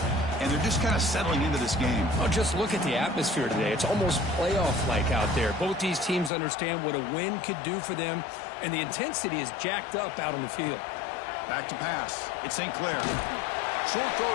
and they're just kind of settling into this game. Oh, just look at the atmosphere today. It's almost playoff-like out there. Both these teams understand what a win could do for them, and the intensity is jacked up out on the field. Back to pass. It's St. Clair. Short throw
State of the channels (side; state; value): right; drops out; at 6.3 s